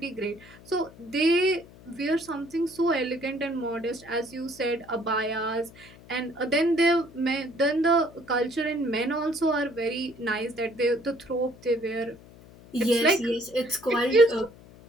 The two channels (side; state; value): left; noise; hum, 21 dB below the sound